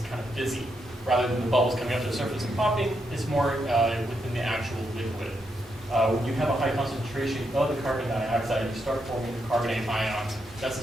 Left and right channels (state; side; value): normal; both; correlation 0.81